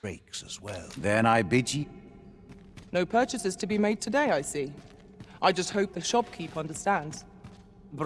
breaks as well. Then I bid ye. No purchases to be made today, I see. I just hope the shopkeep understands.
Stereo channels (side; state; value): both; identical; correlation 1.00